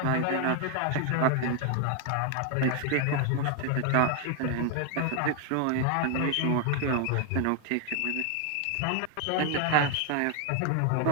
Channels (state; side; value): different; both; correlation 0.01